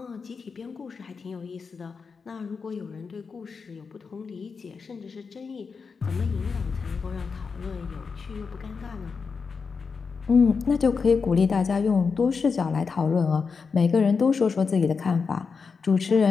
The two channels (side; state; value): right; quieter; 5.2 dB